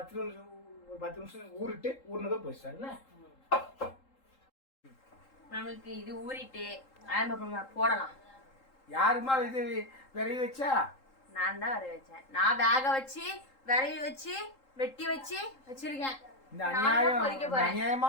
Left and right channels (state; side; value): late; right; 3.8 ms